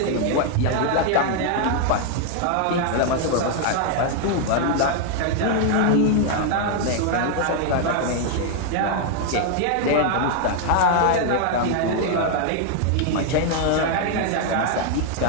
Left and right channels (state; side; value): different; both; correlation 0.00